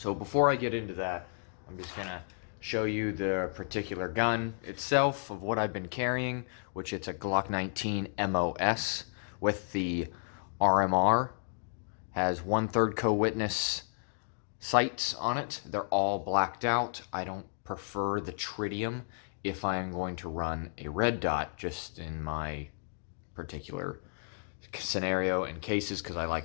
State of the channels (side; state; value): right; silent; digital silence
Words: before I get into that, I'm just going to show you the particular gun itself of what I've been carrying, which it's a Glock 19 MOS with the RMR. Has 1/3 co-witness sights on it. They're all blacked out. I don't prefer the tritium if I am going to run a red dot, just in my particular scenario and cases, because I